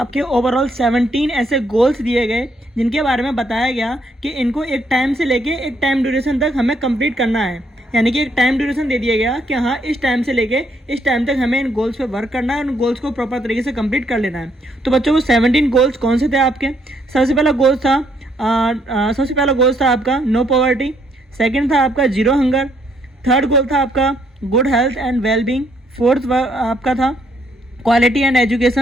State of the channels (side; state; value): both; normal; correlation 0.71